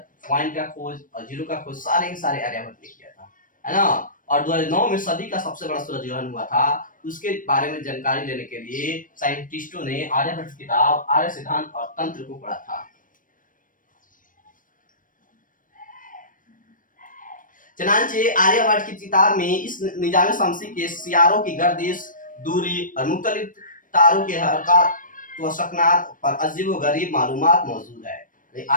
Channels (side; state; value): right; late; 0.39 ms